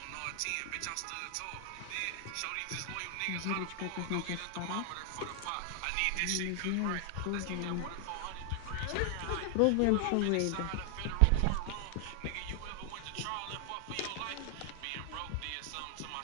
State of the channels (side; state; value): both; different; correlation 0.00